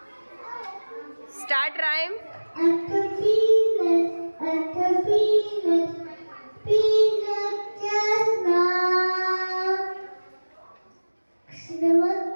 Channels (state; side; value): inverted; both; correlation -1.00